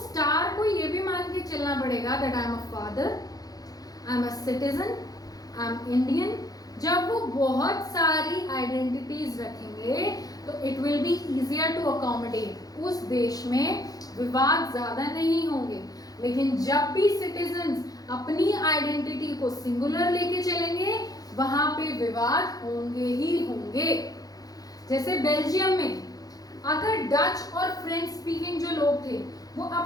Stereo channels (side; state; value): right; late; 0.18 ms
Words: स्टार को ये भी मान के चलना पड़ेगा that I am a father, I am a citizen, I am Indian. जब वो बहुत सारी आइडेंटिटीज रखेंगे तो it will be easier to accommodate, उस देश में विवाद ज्यादा नहीं होंगे। लेकिन जब भी सिटीजन्स अपनी आइडेंटिटी को सिंगुलर लेके चलेंगे, वहां पे विवाद होंगे ही होंगे। जैसे बेल्जियम में अगर डच और फ्रेंच स्पीकिंग जो लोग थे वो